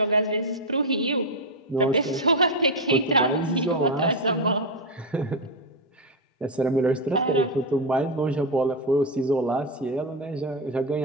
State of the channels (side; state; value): both; normal; correlation 0.06